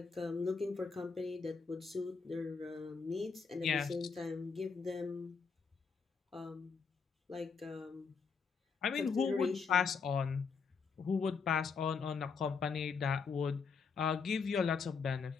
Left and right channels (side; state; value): right; quieter; 5.4 dB